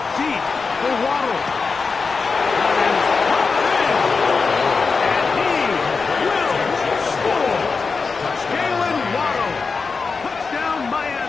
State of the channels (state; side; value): quieter; right; 4.7 dB